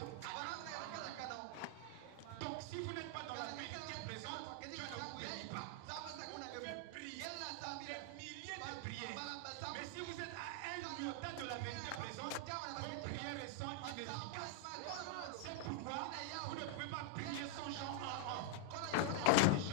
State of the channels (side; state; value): both; different; correlation 0.00